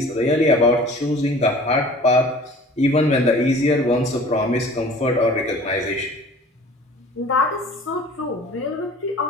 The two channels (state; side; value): normal; both; correlation 0.46